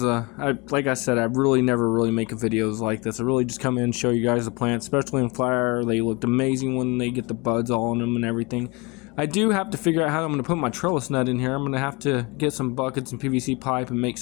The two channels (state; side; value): quieter; right; 27.0 dB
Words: like I said, I really never make videos like this. I really just come in and show you guys the plants, especially in flower. They looked amazing when they get the buds all on them and everything. I do have to figure out how I'm going to put my trellis net in here. I'm going to have to get some buckets and PVC pipe and make